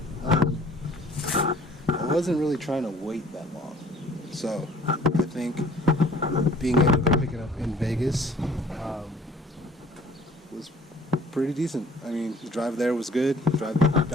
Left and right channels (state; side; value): normal; both; correlation 0.53